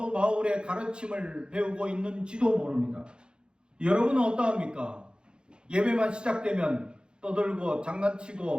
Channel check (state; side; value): late; left; 0.050 ms